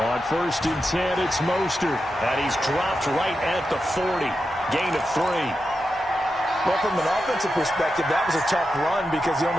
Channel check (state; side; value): normal; both; correlation 0.89